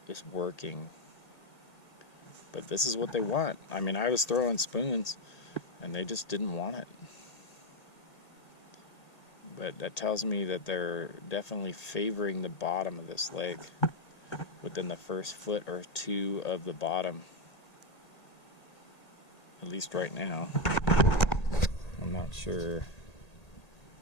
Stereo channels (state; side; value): late; right; 1.8 ms